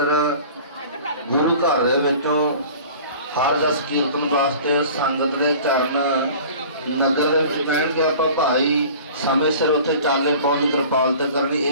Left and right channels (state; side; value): inverted; both; correlation -0.44